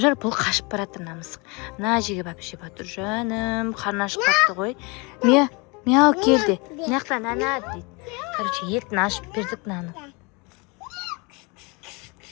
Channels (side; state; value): right; quieter; 28.8 dB